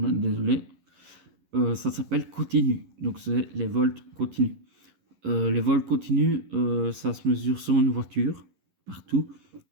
ça s'appelle continu. Donc c'est les volts continus. Les volts continus, ça se mesure sur une voiture, partout,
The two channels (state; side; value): late; left; 11 ms